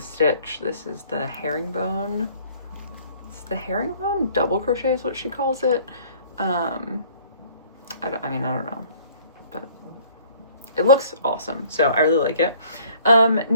This is the herringbone. It's the herringbone double crochet is what she calls it. I don't know, but it looks awesome, so I really like it.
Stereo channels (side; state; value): both; inverted; correlation -0.55